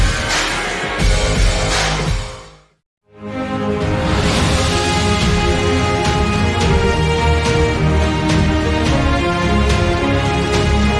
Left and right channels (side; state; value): both; identical; correlation 1.00